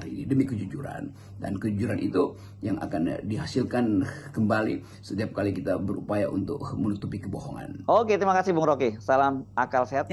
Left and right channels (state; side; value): identical; both; correlation 1.00